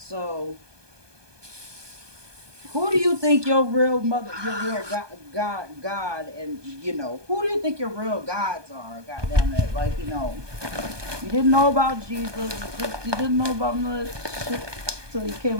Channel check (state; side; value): late; left; 1.2 ms